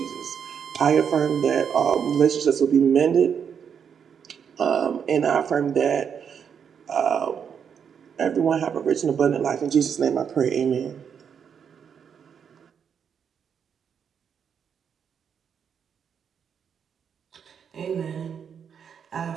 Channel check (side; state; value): left; quieter; 7.4 dB